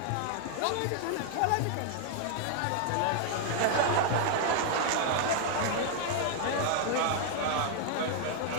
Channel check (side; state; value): both; different; correlation 0.00